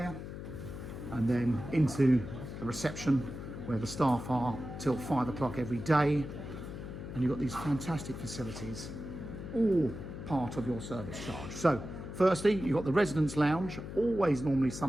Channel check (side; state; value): left; noise; hum, 9 dB below the sound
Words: and then into the reception where the staff are till 5 o'clock every day. And you've got these fantastic facilities, all part of your service charge. So firstly, you've got the residence lounge, always normally